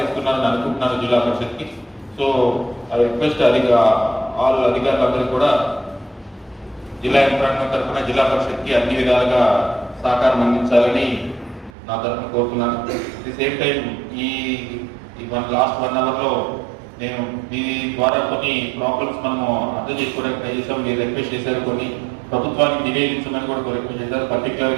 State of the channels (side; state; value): left; drops out; at 11.7 s